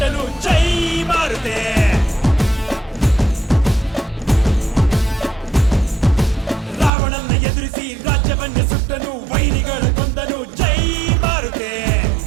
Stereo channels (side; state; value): left; drops out; at 6.9 s